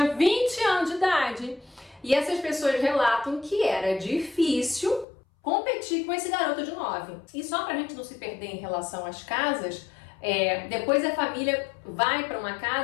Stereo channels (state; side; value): drops out; right; at 5.1 s